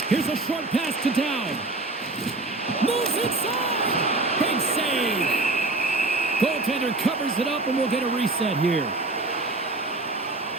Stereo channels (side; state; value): left; quieter; 3.1 dB